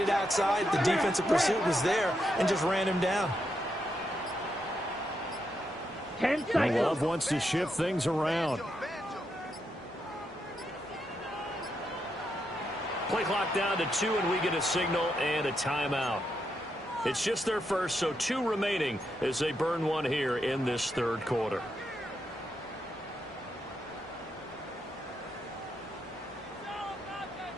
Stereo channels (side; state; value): both; normal; correlation 0.82